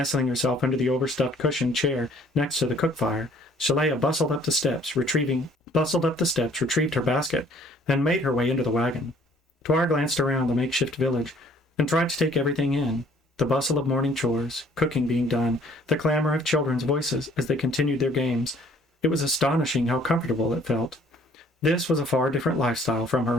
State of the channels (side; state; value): both; normal; correlation 0.58